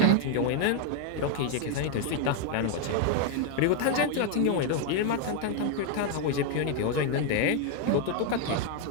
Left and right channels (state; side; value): different; both; correlation 0.00